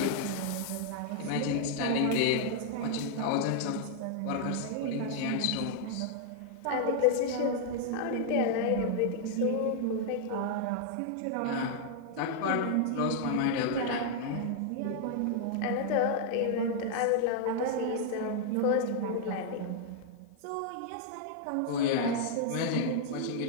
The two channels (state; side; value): different; both; correlation -0.01